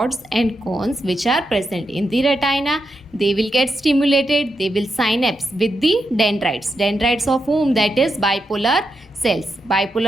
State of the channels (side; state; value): both; normal; correlation 0.85